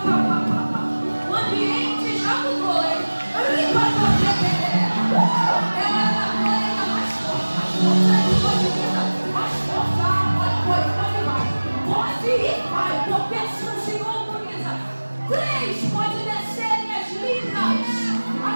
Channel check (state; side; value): inverted; both; correlation -1.00